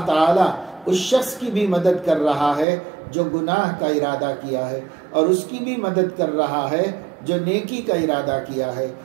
تعالیٰ اس شخص کی بھی مدد کر رہا ہے جو گناہ کا ارادہ کیا ہے، اور اس کی بھی مدد کر رہا ہے جو نیکی کا ارادہ کیا ہے،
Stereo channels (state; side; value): drops out; left; at 2.7 s